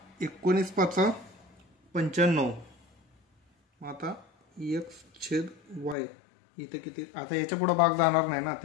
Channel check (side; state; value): right; drops out; at 6.0 s